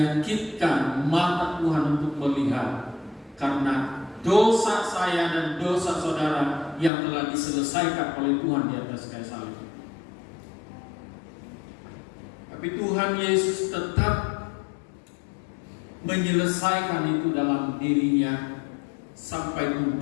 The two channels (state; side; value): drops out; right; at 6.9 s